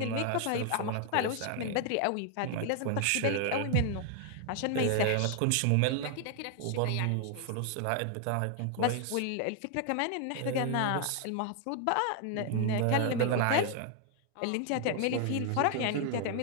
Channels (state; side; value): different; both; correlation 0.00